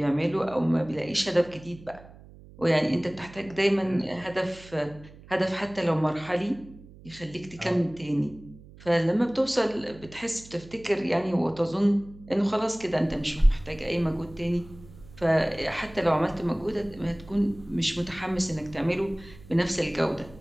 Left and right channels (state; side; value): noise; right; hum, 20 dB below the sound